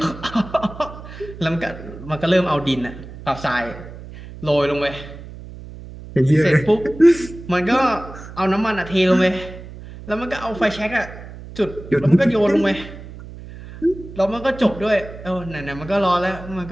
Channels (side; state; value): right; noise; hum, 14 dB below the sound